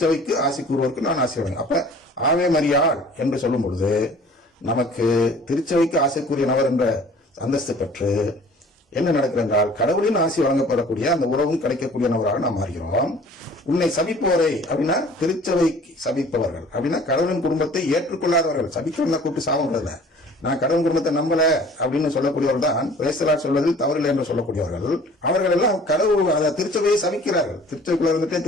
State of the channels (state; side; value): normal; both; correlation 0.50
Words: ஆசி கூறுவோருக்கு நான் ஆசி வழங்குவேன். அப்ப ஆவே மரியாள் என்று சொல்லும் பொழுது நமக்கு திருச்சபைக்கு ஆசைக்குரிய நபர் என்ற அந்தஸ்து பெற்று என்ன நடக்கிறது என்றால், கடவுளின் ஆசி வழங்கப்படக்கூடிய அந்த உறவும் கிடைக்கக்கூடிய நபராக நாம் மாறுகிறோம். உன்னை சபிப்போரை அப்படின்னா திருச்சபை சபிப்பவர்கள் அப்படின்னா கடவுளின் குடும்பத்தை ஏற்றுக்கொள்ளாதவர்கள். சபிக்கிறவங்க கூப்பிட்டு சாபம், நான் கடவுள் குடும்பத்தை நம்பல அப்படின்னு சொல்லக்கூடியவர்கள் தான் பிரேசலா சொல்வதில் தவறில்லை என்று சொல்லக்கூடியவர்கள். அவர்கள் எல்லாம் கடவுள் திருச்சபையை சபிக்கிறார்கள். திருச்சபைக்குள்ள இருந்துட்டே